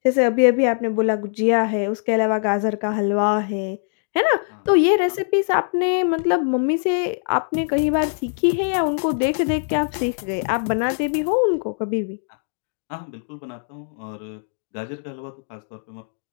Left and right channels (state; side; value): silent; right; digital silence